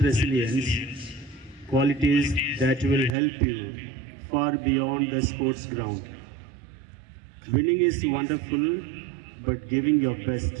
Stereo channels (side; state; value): left; drops out; at 3.1 s